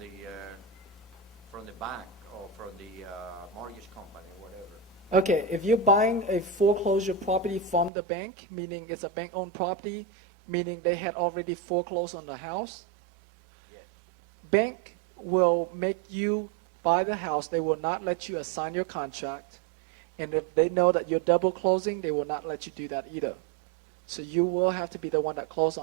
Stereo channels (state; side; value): drops out; left; at 7.9 s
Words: bank or from the mortgage company, whatever. Okay, if you're buying a foreclosure property from the bank, meaning it's a bank-owned property, meaning they had already foreclosed on the house, Yes. bank will make you buy the house. They will not let you assign your contract. And if they know that you're double closing, they will not let you do that either. So you will have to be the one that close